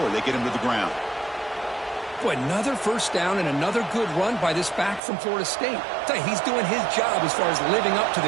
they get him to the ground. Boy, another first down and another good run by this back from Florida State. I tell you, he's doing his job as far as living up to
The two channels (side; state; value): left; drops out; at 5.0 s